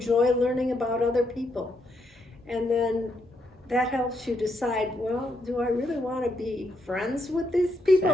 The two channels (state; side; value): normal; both; correlation 0.77